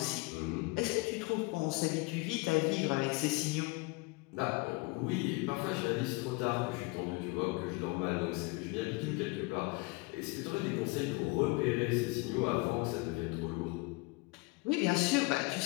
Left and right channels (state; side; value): quieter; right; 26.7 dB